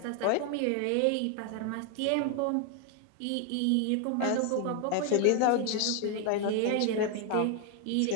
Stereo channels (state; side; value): different; both; correlation 0.00